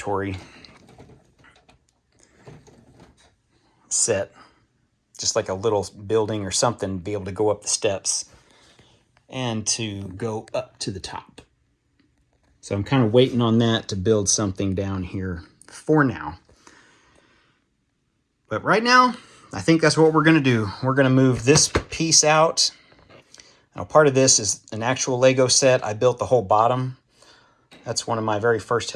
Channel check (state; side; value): identical; both; correlation 1.00